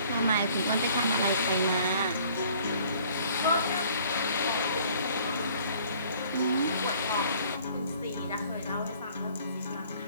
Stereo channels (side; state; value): both; inverted; correlation -0.56